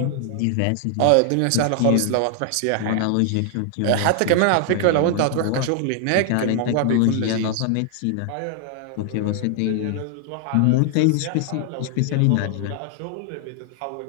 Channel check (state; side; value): different; both; correlation 0.00